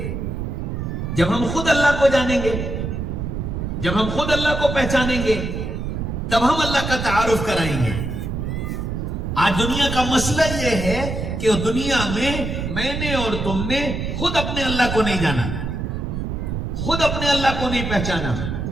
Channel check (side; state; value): right; noise; rumble, 3 dB below the sound